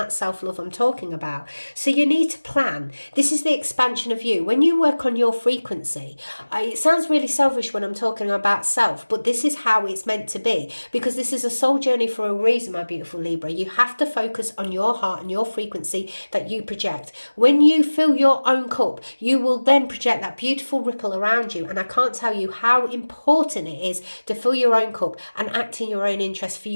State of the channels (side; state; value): both; inverted; correlation -1.00